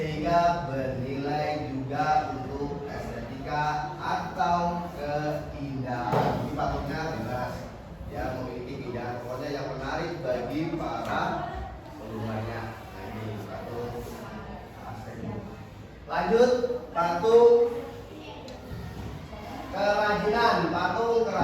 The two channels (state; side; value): identical; both; correlation 1.00